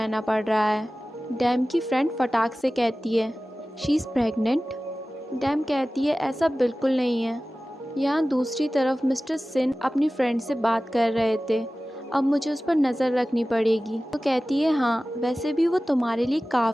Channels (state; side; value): normal; both; correlation 0.96